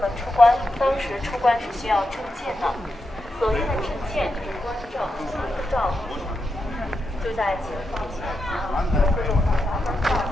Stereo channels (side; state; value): both; normal; correlation 0.86